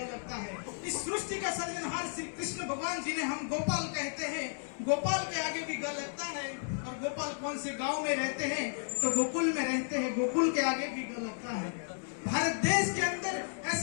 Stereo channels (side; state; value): right; silent; digital silence